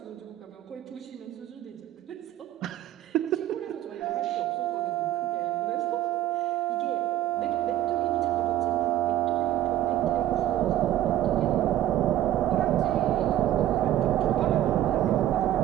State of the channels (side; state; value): left; quieter; 12.9 dB